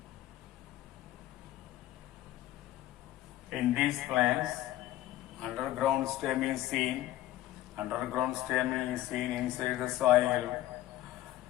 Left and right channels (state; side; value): quieter; right; 14.6 dB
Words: in these plants, underground stem is seen. Underground stem is seen inside the soil.